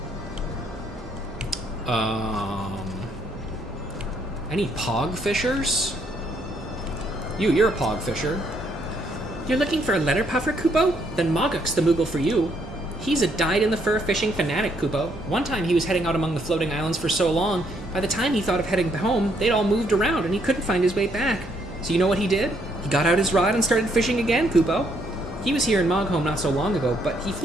Any pog fishers? You're a pog fisher. You're looking for a letter puffer, Kupo? Then Mogok's the Moogle for you. He's a dyed-in-the-fur fishing fanatic, Kupo. One time he was heading out among the floating islands for so long, by the time he thought of heading home, they'd all moved around and he couldn't find his way back. So you know what he did? He got out his rod and started fishing again, Kupo. He was here in Mogholm not so long ago, but he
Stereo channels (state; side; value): normal; both; correlation 0.71